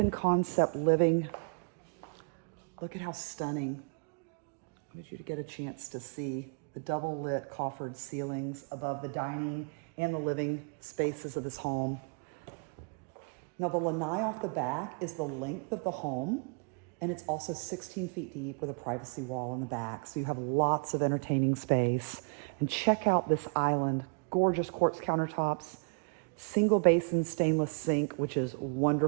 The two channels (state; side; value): quieter; left; 38.9 dB